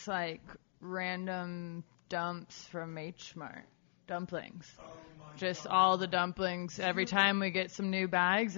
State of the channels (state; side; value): silent; right; digital silence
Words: random dumps from H Mart. dumplings. Oh my Just God. all the dumplings every time we get some new bags,